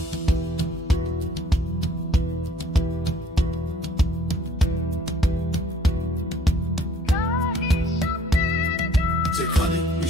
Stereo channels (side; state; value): both; normal; correlation 0.57